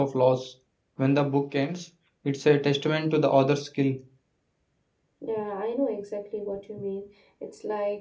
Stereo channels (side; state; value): both; identical; correlation 1.00